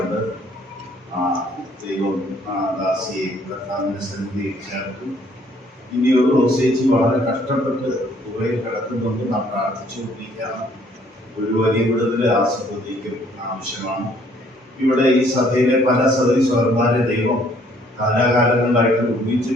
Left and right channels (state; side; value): normal; both; correlation 0.62